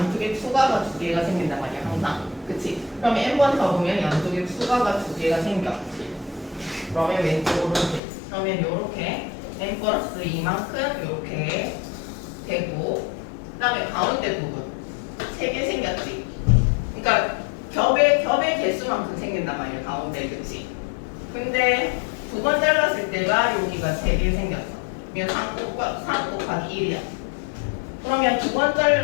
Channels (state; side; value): drops out; right; at 8.0 s